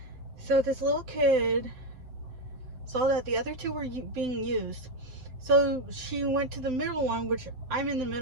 So this little kid saw that the other two were being used. So she went to the middle one, which I'm in the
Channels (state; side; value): late; left; 7.8 ms